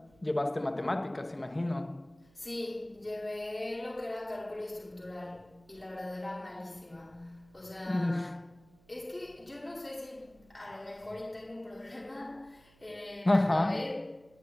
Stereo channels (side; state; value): right; noise; hum, 29 dB below the sound